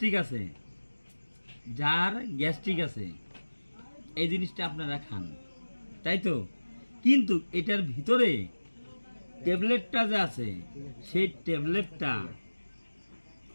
আছে এই জিনিসটা আপনারা খান, তাই তো। কিন্তু এটার ভিতরে ট্যাবলেটটা যে আছে সেই ট্যাবলেটটা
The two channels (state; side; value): inverted; both; correlation -1.00